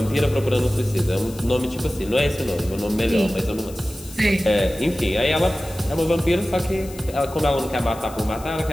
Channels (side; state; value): left; noise; hiss, 19 dB below the sound